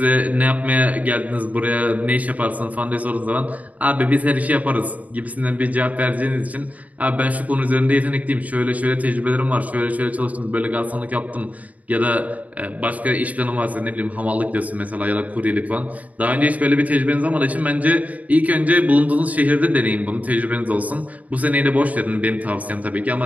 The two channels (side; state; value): left; late; 0.072 ms